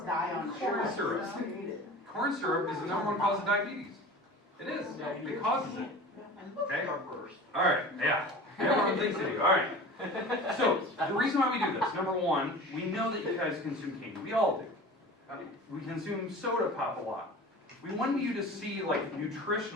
dye on Corn sugar. syrup. Just eat it. Corn syrup is the #1 cause of diabetes. It is. It causes it. Okay? All right, yeah. Everyone thinks they do. All right. So, the reason why we do this, number 1, we know that you guys consume candy. We all do. We consume soda pop a lot. We want you to see, like,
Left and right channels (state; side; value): normal; both; correlation 0.37